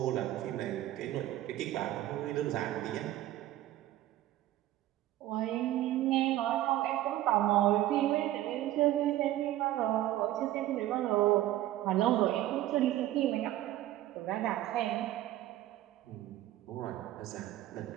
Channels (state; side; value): quieter; left; 14.4 dB